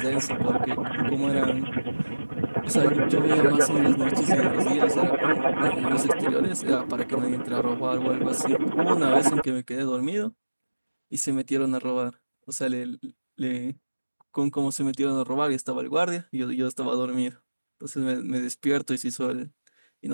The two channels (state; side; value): inverted; both; correlation -1.00